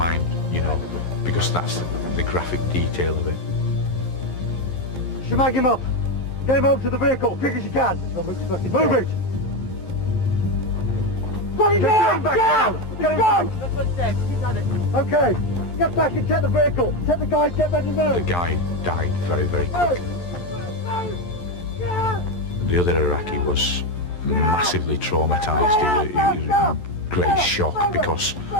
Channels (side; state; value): right; late; 11 ms